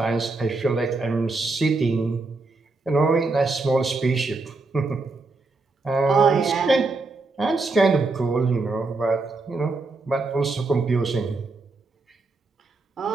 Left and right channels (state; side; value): quieter; left; 3.6 dB